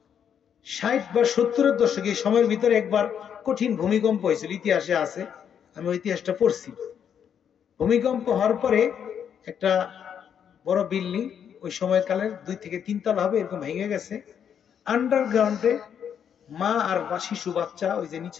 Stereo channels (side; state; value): right; quieter; 8.3 dB